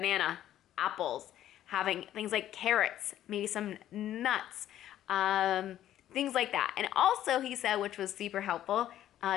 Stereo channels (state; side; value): quieter; right; 12.2 dB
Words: apples. Having things like carrots, maybe some nuts, things like that. And also, he said, which was super helpful,